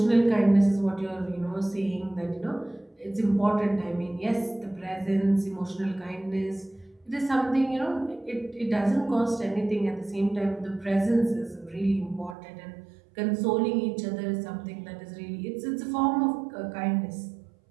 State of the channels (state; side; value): drops out; left; at 12.4 s